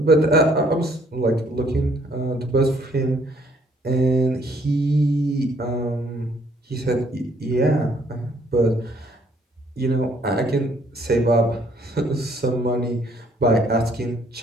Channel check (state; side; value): normal; both; correlation 0.64